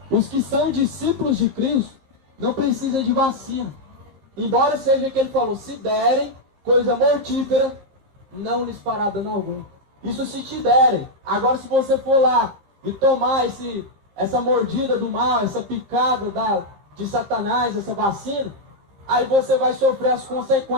não precisam de vacina. Embora seja que ele falou, se derem coisa mortífera, não lhes fará dano algum. Isso se te derem. Agora se você for lá e tomar essa mordida do mal, essa picada de Satanás, essa vacina, aí você vai sofrer as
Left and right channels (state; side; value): late; left; 15 ms